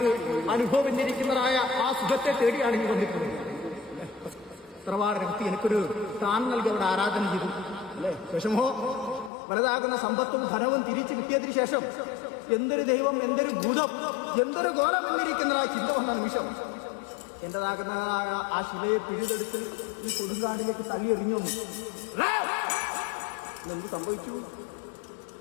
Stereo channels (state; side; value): drops out; right; at 9.3 s